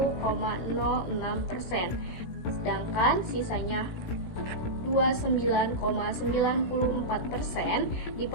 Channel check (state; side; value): late; right; 17 ms